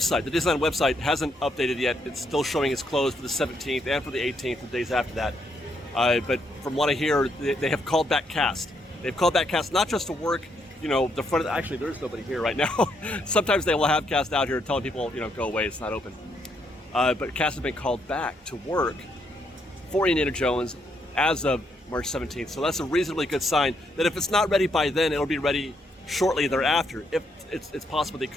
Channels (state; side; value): normal; both; correlation 0.75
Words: the Disneyland website, hasn't updated yet. It's still showing it's closed for the 17th and for the 18th, the days after that. But from what I hear, they have called back cast. They've called back cast not just to work, you know, the front of actually, there's nobody here right now. Sometimes they will have cast out here telling people, you know, go away, it's not open. But cast has been called back to work for Indiana Jones as of March 17th. So that's a reasonably good sign that if it's not ready by then, it'll be ready shortly thereafter. If it's possible they